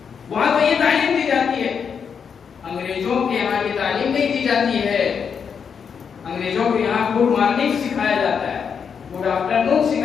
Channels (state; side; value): quieter; right; 6.7 dB